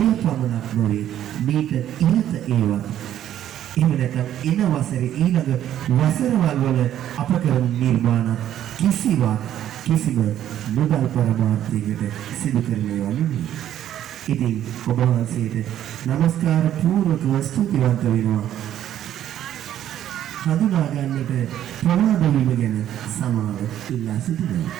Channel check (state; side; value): quieter; left; 11.4 dB